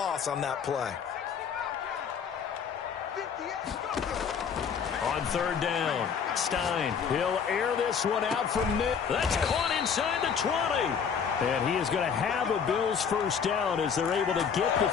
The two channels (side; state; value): right; quieter; 6.8 dB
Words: on that play. On 3rd down, Stein, he'll air this one out from mid. That's caught inside the 20. And he is going to have a Bills first down as they're able to get the